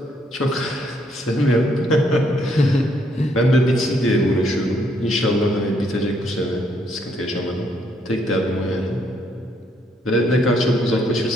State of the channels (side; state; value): both; normal; correlation 0.71